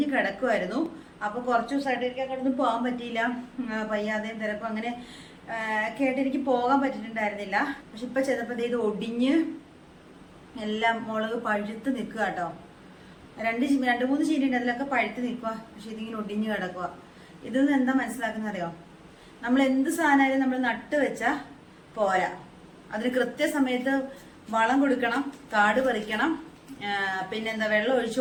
കിടക്കുമായിരുന്നു. അപ്പൊ കുറച്ച് ദിവസമായിട്ട് എനിക്ക് അങ്ങോട്ടൊന്നും പോകാൻ പറ്റിയില്ല, പയ്യാതെയും തിരക്കും അങ്ങനെ കേട്ട് എനിക്ക് പോകാൻ പറ്റിയിട്ടുണ്ടായിരുന്നില്ല. പക്ഷെ ഇപ്പൊ ചെന്നപ്പോ ഇത് ഒടിഞ്ഞ് എല്ലാം മുളക് പഴുത്ത് നിൽക്കുക കേട്ടോ. രണ്ട് മൂന്ന് ചീനി ഉണ്ട്, അതിലൊക്കെ പഴുത്ത് നിൽക്കുക. പക്ഷെ ഇതിങ്ങനെ ഒടിഞ്ഞ് കിടക്കുക. ഇതിൽ നിന്ന് എന്താ മനസ്സിലാക്കുന്ന അറിയോ, നമ്മൾ എന്ത് സാധനമായാലും നമ്മൾ നട്ട് വെച്ചാൽ പോരാ, അതിന് കൃത്യസമയത്ത് വളം കൊടുക്കണം, കാട് പറിക്കണം, പിന്നെന്താ വെള്ളം ഒഴിച്ചു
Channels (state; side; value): identical; both; correlation 1.00